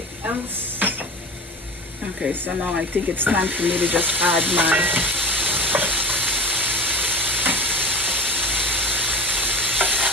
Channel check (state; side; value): normal; both; correlation 0.33